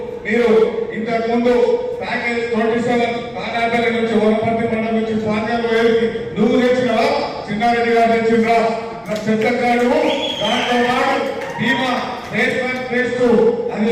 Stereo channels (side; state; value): both; identical; correlation 1.00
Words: మీరు ఇంతకు ముందు ప్యాకేజ్ 27 కానాపల్లి నుంచి వనపర్తి మండలం నుంచి పాండ్యాలు నువ్వు తెచ్చినావా? చిన్నారెడ్డి గారు తెచ్చిండ్రా? చెత్తకాడు. దాంతో పాటు బీమా ఫేజ్ 1 ఫేజ్ 2 అది